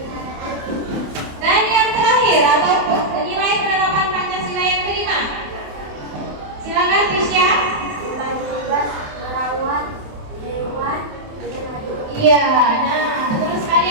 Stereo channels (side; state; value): left; late; 27 ms